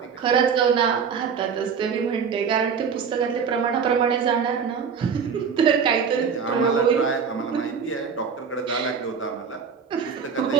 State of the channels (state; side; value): quieter; left; 6.5 dB